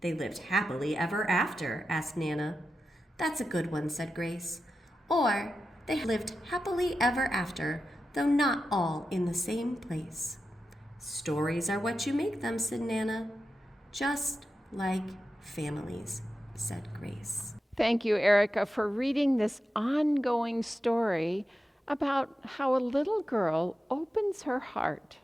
lived happily ever after?" asked Nana. "That's a good one," said Grace. "Or they lived happily ever after, though not all in the same place." "Stories are what you make them," said Nana. "Just like families," said Grace. Thank you, Erica, for reading this ongoing story about how a little girl opens her heart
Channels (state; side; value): normal; both; correlation 0.91